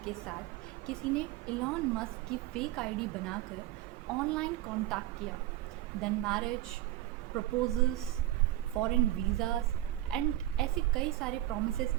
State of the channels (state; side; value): quieter; left; 14.7 dB